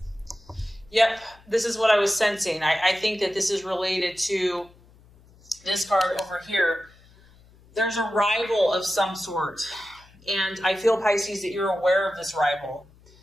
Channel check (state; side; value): noise; left; hum, 27 dB below the sound